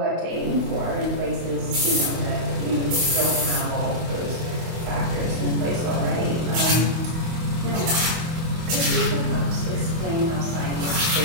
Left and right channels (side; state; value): left; late; 24 ms